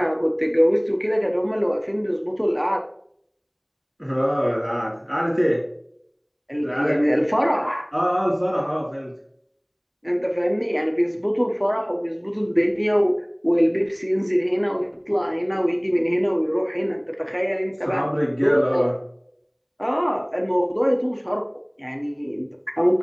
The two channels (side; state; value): both; identical; correlation 1.00